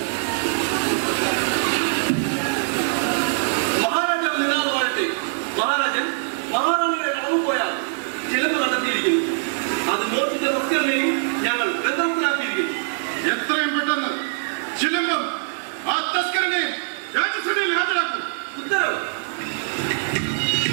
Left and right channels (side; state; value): left; silent; digital silence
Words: മഹാരാജാവ് നിരാളമാകട്ടെ. മഹാരാജൻ മഹാറാണിയുടെ കളവ് പോയാൽ ചിലവ് കണ്ടെത്തിയിരിക്കുന്നു. അത് മോഷിച്ച ഭക്തരെയും ഞങ്ങൾ ബന്ധത്തിലാക്കിയിരിക്കുന്നു. എത്രയും പെട്ടെന്ന് ചിലമ്പം ആ തസ്കരനെ രാജ്യസഭയിൽ ഹാജരാക്കും. ഉത്തരവ്.